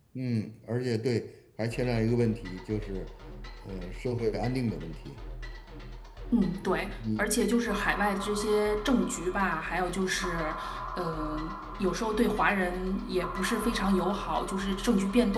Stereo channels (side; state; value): both; identical; correlation 1.00